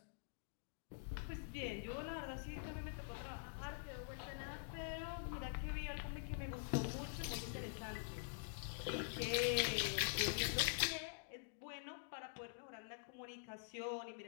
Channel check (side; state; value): right; silent; digital silence